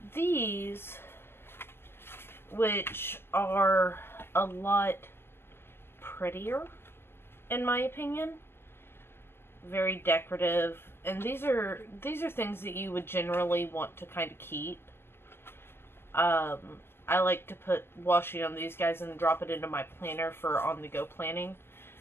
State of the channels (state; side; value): late; right; 0.11 ms